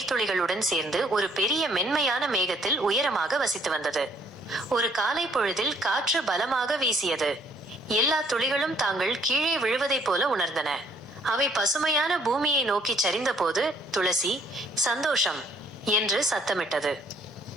சேர்ந்து ஒரு பெரிய மென்மையான மேகத்தில் உயரமாக வசித்து வந்தது. ஒரு காலை பொழுதில் காற்று பலமாக வீசியது. எல்லா துளிகளும் தாங்கள் கீழே விழுவதைப் போல உணர்ந்தன. அவை பசுமையான பூமியை நோக்கி சரிந்த போது துளசி சந்தோஷம் என்று சத்தமிட்டது.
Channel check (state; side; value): normal; both; correlation 0.63